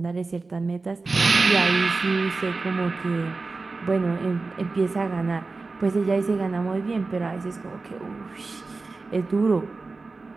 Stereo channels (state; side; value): quieter; left; 3.8 dB